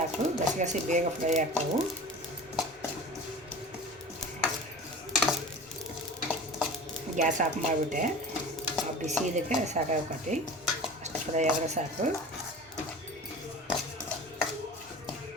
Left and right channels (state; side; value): normal; both; correlation 0.37